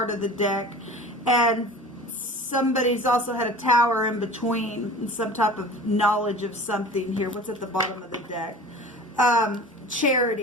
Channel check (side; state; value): both; normal; correlation 0.39